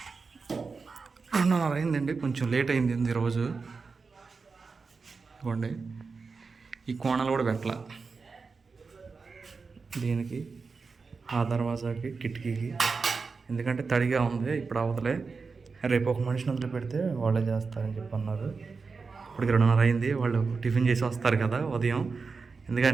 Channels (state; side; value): quieter; left; 4.7 dB